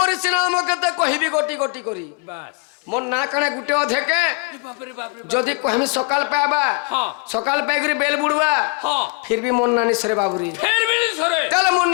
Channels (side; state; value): right; quieter; 31.2 dB